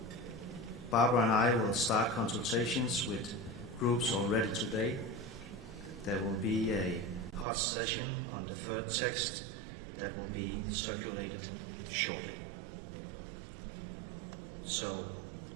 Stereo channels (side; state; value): left; drops out; at 7.5 s